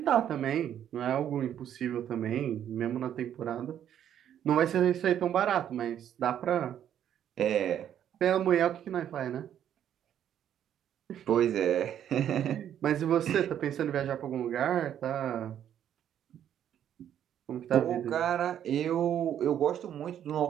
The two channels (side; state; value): left; quieter; 10.1 dB